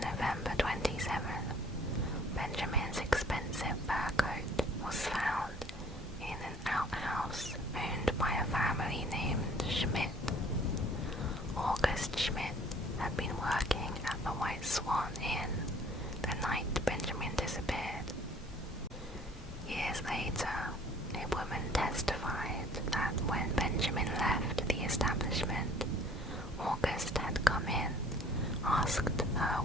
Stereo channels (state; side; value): normal; both; correlation 0.54